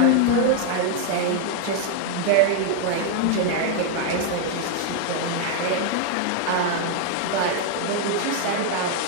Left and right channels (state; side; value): different; both; correlation 0.00